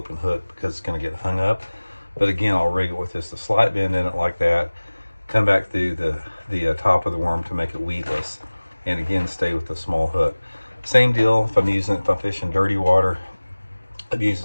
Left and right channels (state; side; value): inverted; both; correlation -1.00